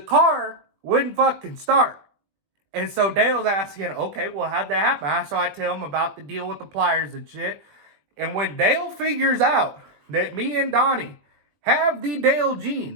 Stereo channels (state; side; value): late; left; 20 ms